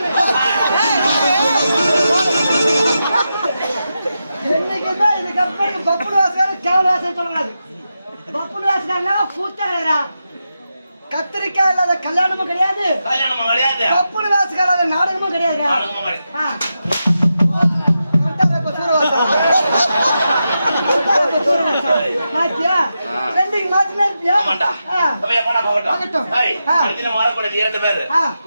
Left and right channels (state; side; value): inverted; both; correlation -0.88